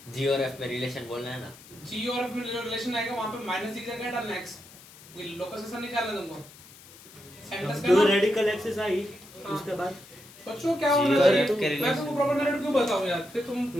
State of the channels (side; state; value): left; noise; hiss, 21 dB below the sound